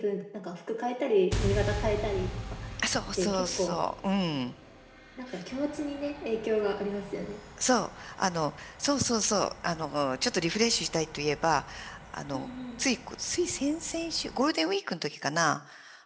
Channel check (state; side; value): identical; both; correlation 1.00